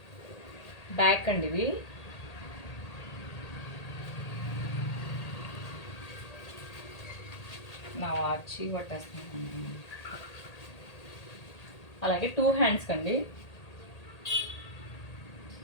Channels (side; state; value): right; late; 1.8 ms